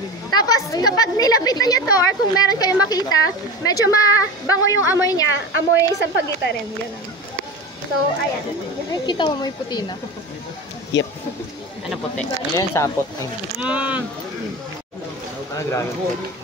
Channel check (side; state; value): both; normal; correlation 0.28